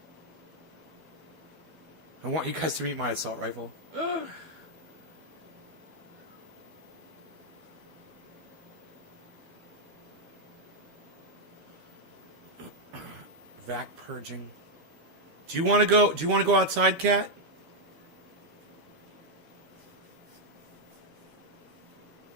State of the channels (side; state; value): left; late; 12 ms